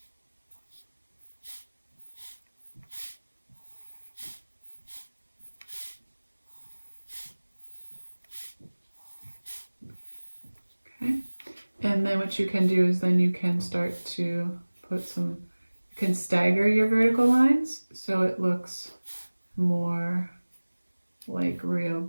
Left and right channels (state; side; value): inverted; both; correlation -1.00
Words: Okay. And then what you can do is then you can start to put some, you can stagger your vertical lines so it looks more like real